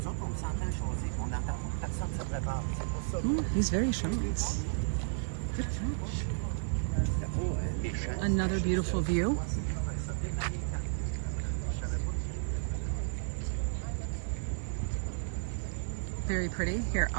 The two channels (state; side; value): silent; left; digital silence